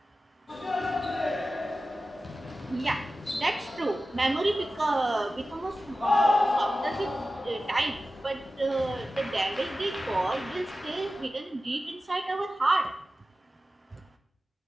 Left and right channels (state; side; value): normal; both; correlation 0.94